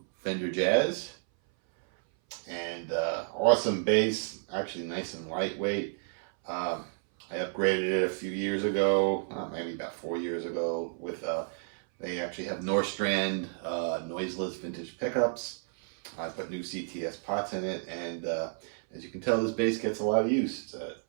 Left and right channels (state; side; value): silent; left; 57 dB below the other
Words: Fender Jazz, and awesome bass, actually nice and lightweight. I upgraded it a few years ago, maybe about 4 years ago, with they actually have Norstrand noiseless vintage pickups. I put new CTS pots in it, and as you can tell, this bass gets a lot of use. It's an